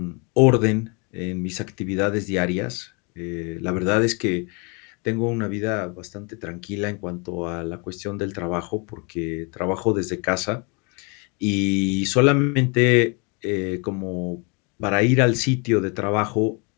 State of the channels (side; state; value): right; quieter; 32.6 dB